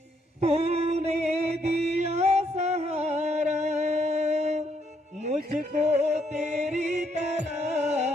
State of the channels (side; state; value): both; normal; correlation 0.73